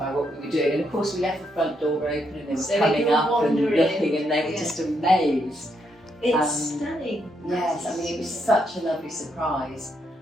what we were doing. And of course we left the front door open and they were coming up and looking, and they were just amazed. It's stunning. Yes, I mean, it was such a lovely surprise.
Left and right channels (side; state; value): both; normal; correlation 0.77